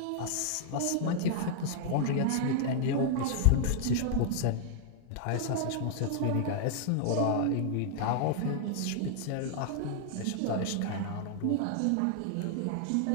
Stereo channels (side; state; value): both; different; correlation -0.01